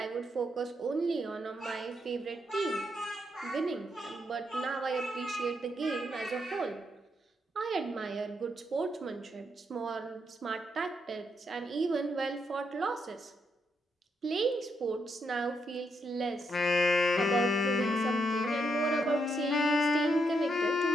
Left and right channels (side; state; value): both; normal; correlation 0.79